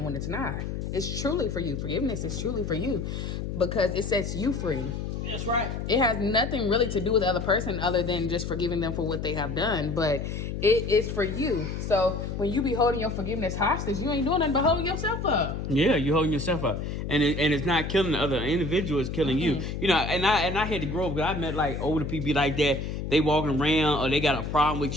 when it's not. It's truly for you. Forgiveness is truly for you because it sets you free. That's right. It has nothing really to do with the other person other than just forgiving them for what they have done. But it is for you. So when you be holding your forgiveness hostage, you ain't doing nothing but holding yourself up. Yeah, you're holding yourself up, and it's not killing the other individual; it's killing you. You know, and I had to grow up because I met like older people like that. They walking around or they got a problem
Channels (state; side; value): noise; left; hum, 4 dB below the sound